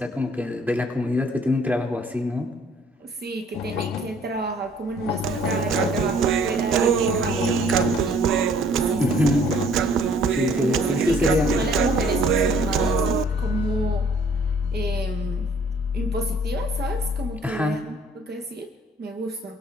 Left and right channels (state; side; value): normal; both; correlation 0.58